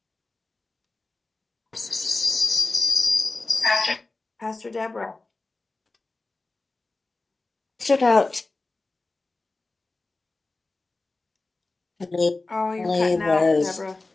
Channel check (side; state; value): right; quieter; 3.3 dB